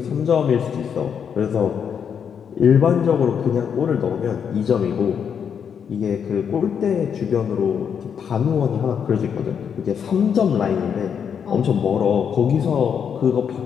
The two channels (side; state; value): right; quieter; 7.5 dB